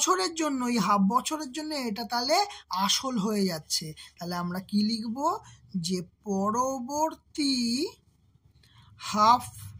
জন্য, এই হাফ বছরের জন্য এটা তাহলে আসল হয়ে যাচ্ছে। তাহলে আমরা কি লিখব, যে পরবর্তী হাফ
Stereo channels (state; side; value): identical; both; correlation 1.00